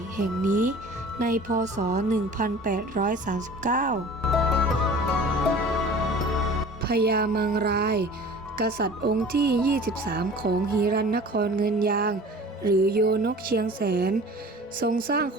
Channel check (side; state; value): both; normal; correlation 0.43